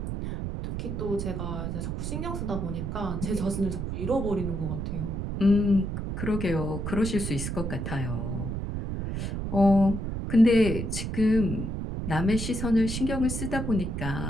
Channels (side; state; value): right; noise; rumble, 3 dB below the sound